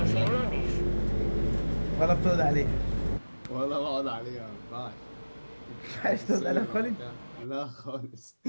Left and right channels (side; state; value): both; inverted; correlation -1.00